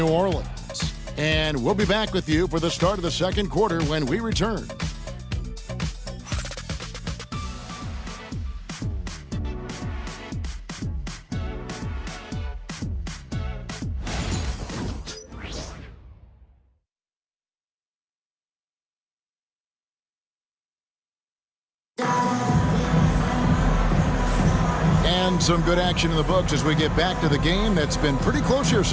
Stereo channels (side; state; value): both; identical; correlation 1.00